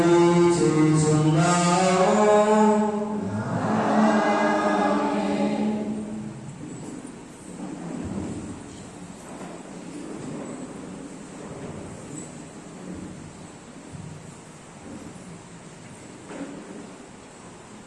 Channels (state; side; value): identical; both; correlation 1.00